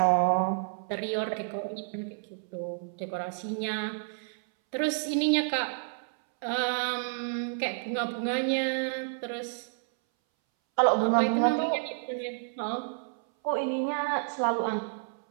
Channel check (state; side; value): silent; left; 58 dB below the other